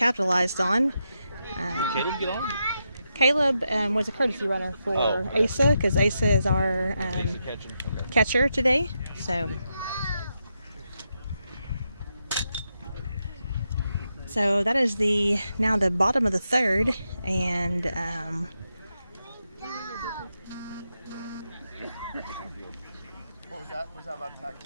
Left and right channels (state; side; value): inverted; both; correlation -0.85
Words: on. Caleb get on? Caleb was a courtesy runner for Asa, because Asa is our catcher today. So that is now the bottom of the 3rd, and What was that? Was that about tag